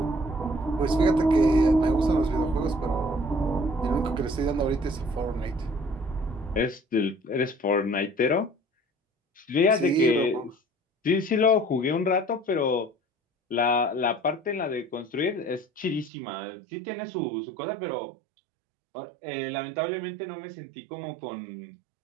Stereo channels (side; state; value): left; drops out; at 16.1 s